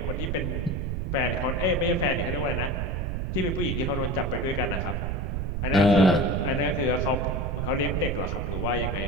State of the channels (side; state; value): right; noise; rumble, 1 dB below the sound